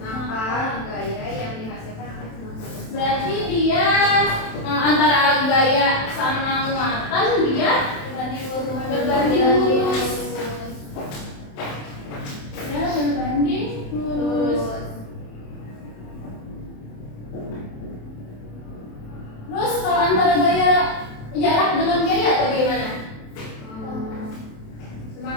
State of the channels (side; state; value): right; late; 27 ms